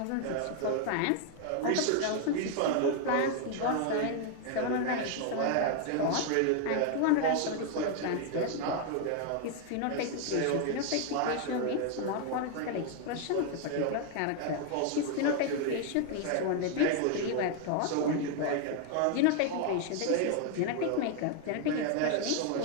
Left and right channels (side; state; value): both; different; correlation 0.00